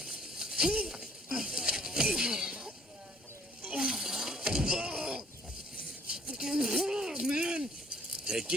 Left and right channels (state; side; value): normal; both; correlation 0.60